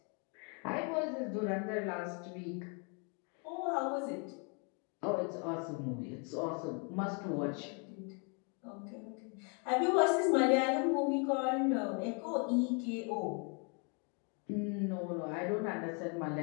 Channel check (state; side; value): quieter; right; 36.7 dB